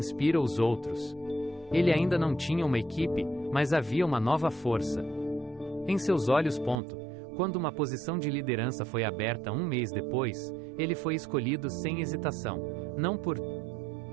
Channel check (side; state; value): left; drops out; at 6.8 s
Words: os outros. Ele ainda não tinha uma equipe, mas havia uma nova força em seus olhos. Quando uma posição de liderança foi aberta um mês depois, ele foi escolhido sem hesitação, não por